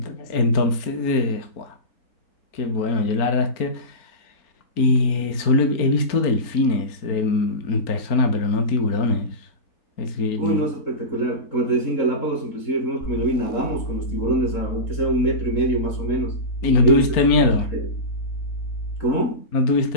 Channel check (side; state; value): right; late; 4.3 ms